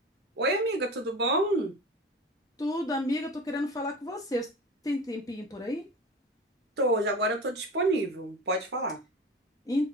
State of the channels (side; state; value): both; normal; correlation 0.33